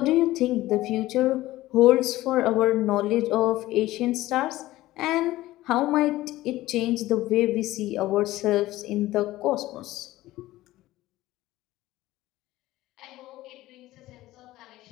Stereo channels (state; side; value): quieter; right; 16.6 dB